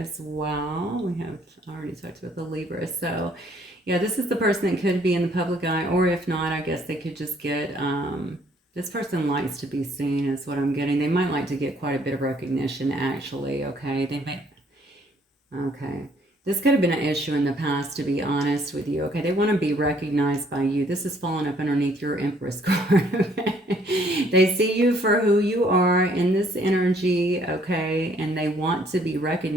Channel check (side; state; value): both; normal; correlation 0.63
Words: well. We have, I already talked about the Libra. So yeah, this is the person that could be in the public eye, or if not, I guess they could just get, this person likes to be seen is what I'm getting. They might like to get quite a bit of recognition, actually, okay? They may, okay. This could have been an issue in the past, to be honest with you, okay? They want to be recognized by you. This is falling up underneath your Empress card, okay? They see you for who you are in this energy, okay? And they want to be